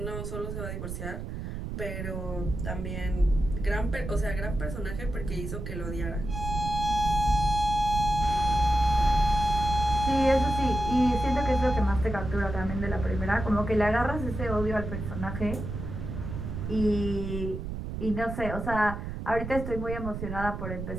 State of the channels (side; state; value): right; noise; rumble, 6 dB below the sound